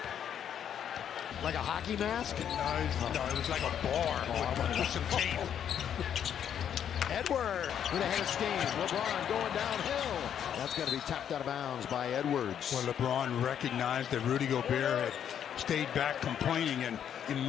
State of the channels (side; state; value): right; quieter; 9.1 dB